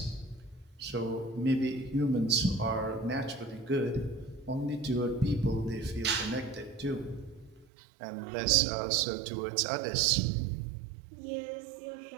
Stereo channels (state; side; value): drops out; left; at 7.7 s